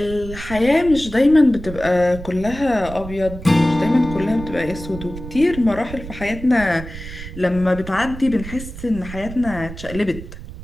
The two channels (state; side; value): noise; right; rumble, 12 dB below the sound